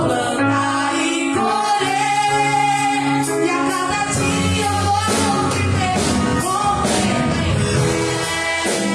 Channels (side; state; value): both; identical; correlation 1.00